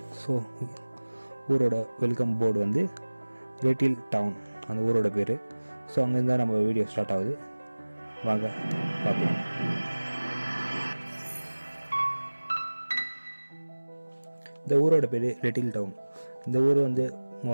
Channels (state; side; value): inverted; both; correlation -1.00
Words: ஸோ ஊரோட வெல்கம் போர்டு வந்து லிட்டில் டவுன், அந்த ஊரோட பேர். ஸோ அங்கேருந்து தான் நம்ம வீடியோ ஸ்டார்ட் ஆகுது. வாங்க பார்க்கலாம். இந்த ஊரோட பேர் லிட்டில் டவுன். இந்த ஊர் வந்து